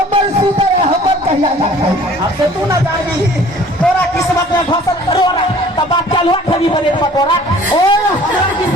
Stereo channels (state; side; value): normal; both; correlation 0.51